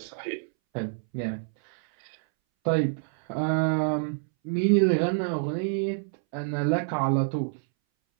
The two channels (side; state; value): left; silent; 60 dB below the other